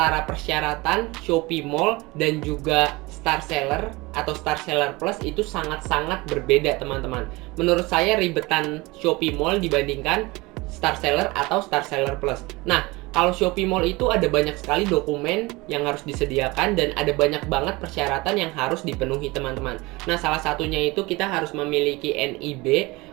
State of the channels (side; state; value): left; quieter; 23.0 dB